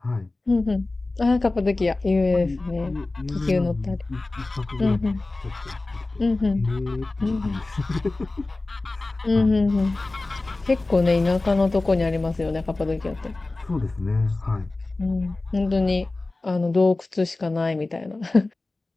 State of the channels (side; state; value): right; quieter; 3.1 dB